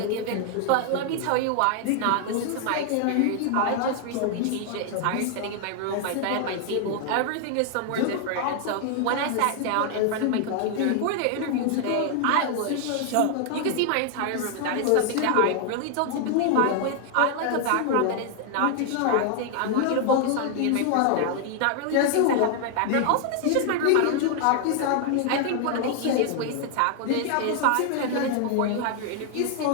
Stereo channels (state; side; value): different; both; correlation 0.00